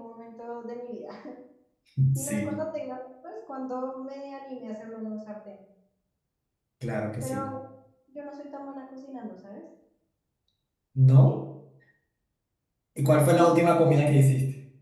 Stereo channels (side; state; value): both; identical; correlation 1.00